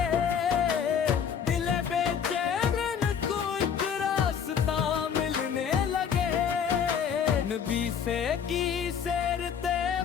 दिल बेचैन को एक रास्ता मिलने लगे। नबी से की सैरते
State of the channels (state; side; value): quieter; right; 7.6 dB